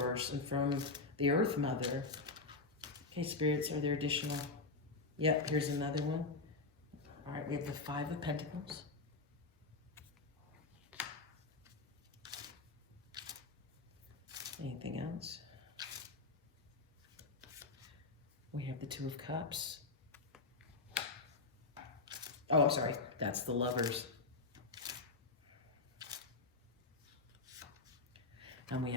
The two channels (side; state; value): right; quieter; 3.7 dB